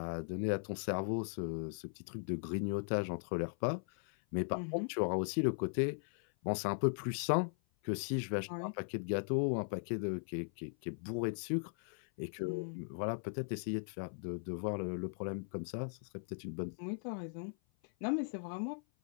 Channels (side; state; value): right; silent; 52 dB below the other